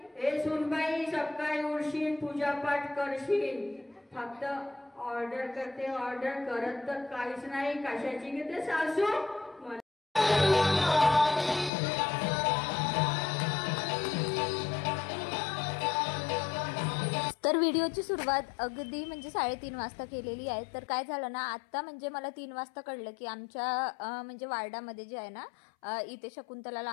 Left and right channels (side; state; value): right; drops out; at 11.7 s